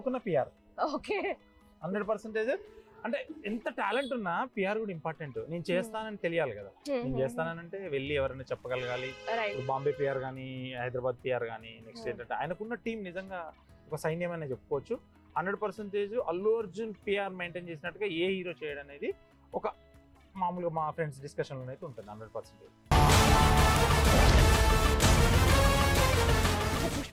పిఆర్. ఓకే. 100% అంటే ఎంత టాలెంట్ ఉన్నా పిఆర్ కూడా ఇంపార్టెంట్. నేను చేస్తానని తెలియాలి కదా. నేను చేస్తానంటే వెళ్ళి ఎవరైనా చెప్పగలగాలి. బాంబే పిఆర్ కానీ, హైదరాబాద్ పిఆర్ కానీ, నెక్స్ట్ ఏంటంటే ఆయనకున్న టీం నిజంగా ఒక సైన్యం అనే చెప్పుకోవచ్చు. 100% అల్లు అర్జున్ పిఆర్ మెయింటైన్ చేసినట్టుగా ఏ హీరో చేయడం అనేది ఒక మామూలుగా మా ఫ్రెండ్స్ డిస్కషన్లో అయితే ఉంటుంది. 100%.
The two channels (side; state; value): both; identical; correlation 1.00